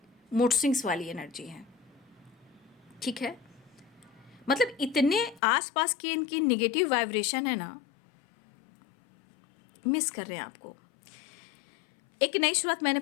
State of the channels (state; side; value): drops out; right; at 5.4 s